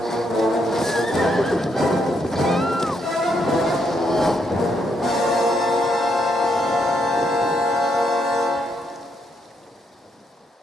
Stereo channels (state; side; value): normal; both; correlation 0.77